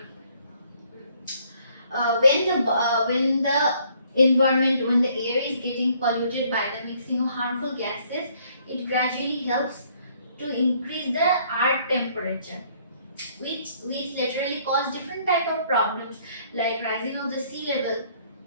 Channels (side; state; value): both; inverted; correlation -0.64